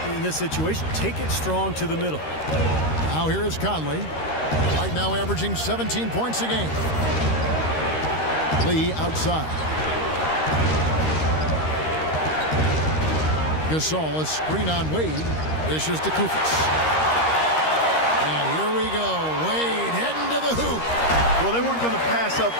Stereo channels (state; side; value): late; right; 13 ms